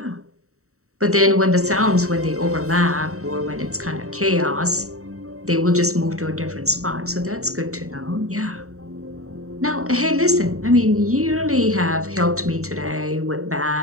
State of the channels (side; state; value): left; late; 0.64 ms